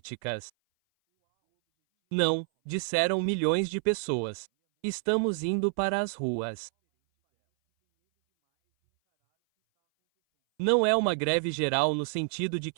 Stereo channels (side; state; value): left; silent; 59 dB below the other